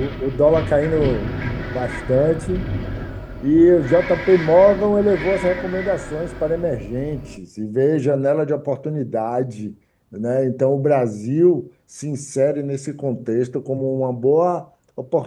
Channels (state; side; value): identical; both; correlation 1.00